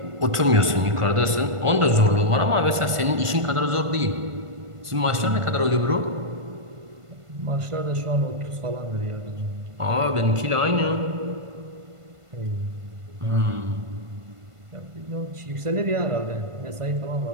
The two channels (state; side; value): late; left; 1.5 ms